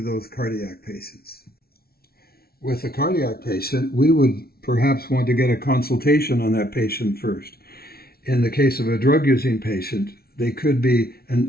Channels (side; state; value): right; late; 0.44 ms